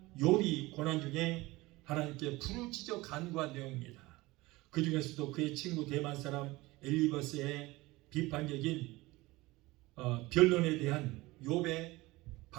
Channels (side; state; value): left; quieter; 20.6 dB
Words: 욥이 고난 중에 하나님께 부르짖어 간구한 내용입니다. 그 중에서도 그의 친구 대만 사람 엘리버스의 비판적인 변론에 대한 욥의